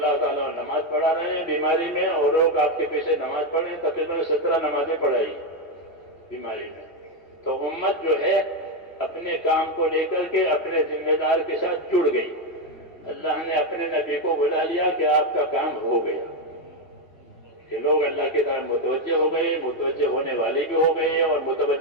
تعالیٰ نماز پڑھا رہے ہیں بیماری میں، اور لوگ آپ کے پیچھے نماز پڑھ رہے ہیں، تقریباً 17 نمازیں پڑھائی بیماری میں۔ تو امت جو ہے اپنے کام کو لے کر کے اپنے ذمہ دار کے ساتھ جڑ گئی، اللہ نے اپنے نبی کو بلا لیا کہ آپ کا کام ہو گیا۔ کہ لوگ اللہ کی طرف متوجہ ہو گئے، متوجہ ہونے والے بھی ہو گئے اور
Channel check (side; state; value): right; late; 3.0 ms